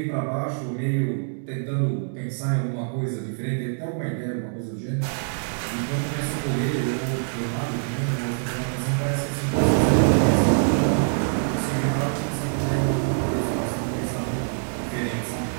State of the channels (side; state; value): left; silent; digital silence